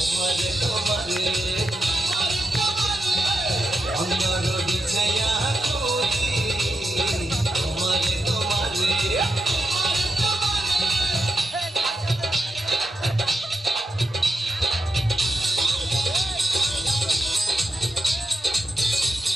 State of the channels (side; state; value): both; normal; correlation 0.86